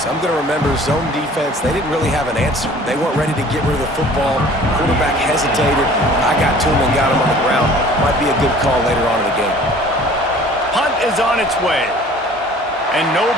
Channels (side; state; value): both; normal; correlation 0.49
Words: I'm going to remember zone defense. They didn't really have an answer. They weren't ready to get rid of the football. Quarterback hesitated. I got to him and got him on the ground. Might be a good call later on in the game. Punt is on its way. And